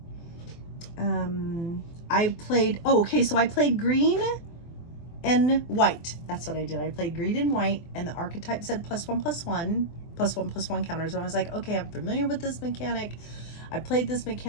I played, oh, okay, so I played green and white. That's what I did. I played green and white, and the archetype said +1/+1 counters. And I was like, okay, I'm familiar with this mechanic. I played this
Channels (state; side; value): late; right; 24 ms